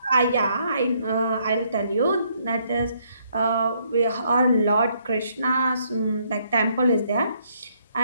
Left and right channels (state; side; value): inverted; both; correlation -0.70